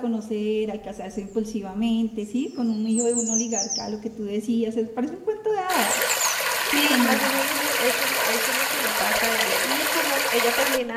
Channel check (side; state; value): both; identical; correlation 1.00